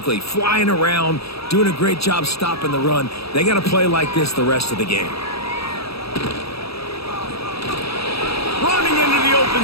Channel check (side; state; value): right; late; 0.77 ms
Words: flying around, doing a great job stopping the run. They got to play like this the rest of the game. Running into the